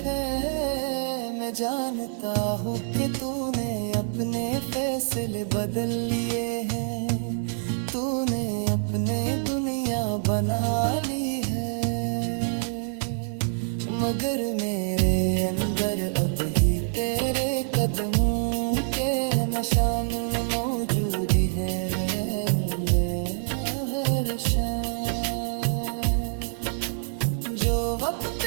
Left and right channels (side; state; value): left; silent; digital silence